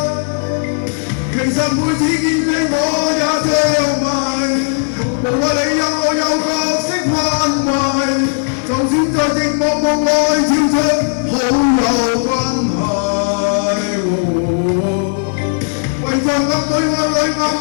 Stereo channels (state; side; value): silent; right; digital silence